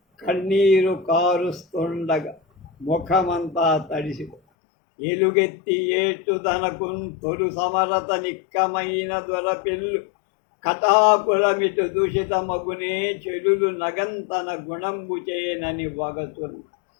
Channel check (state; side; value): drops out; right; at 4.4 s